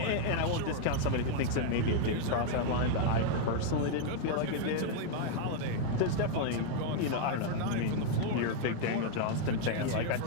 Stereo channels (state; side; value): different; both; correlation 0.00